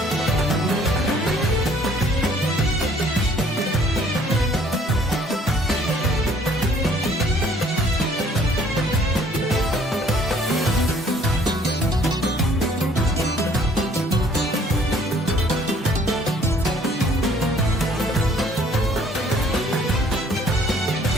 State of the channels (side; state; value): both; normal; correlation 0.59